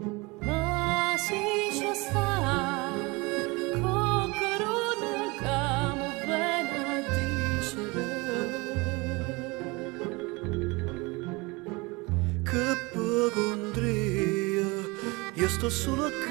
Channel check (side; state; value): left; quieter; 25.4 dB